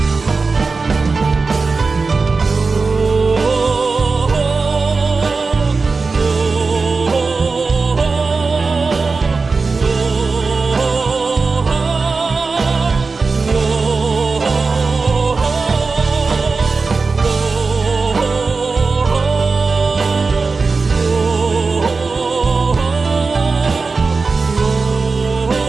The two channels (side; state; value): left; quieter; 4.2 dB